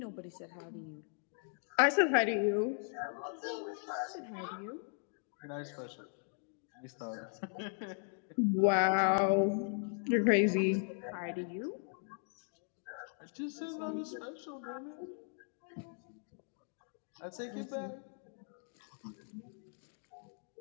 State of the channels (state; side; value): silent; right; 53 dB below the other